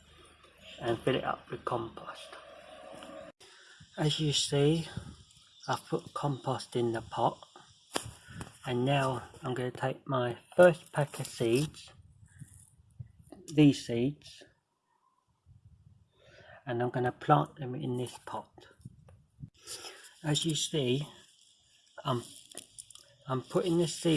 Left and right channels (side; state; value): both; identical; correlation 1.00